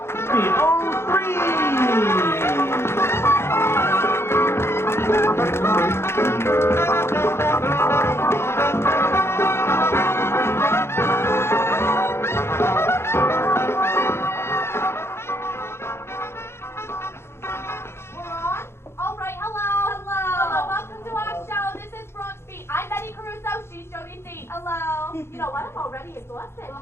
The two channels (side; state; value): right; late; 0.12 ms